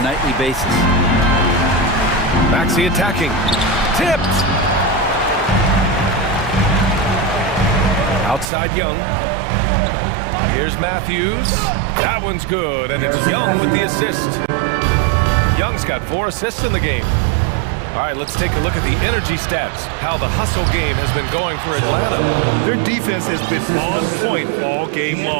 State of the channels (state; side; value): drops out; left; at 8.5 s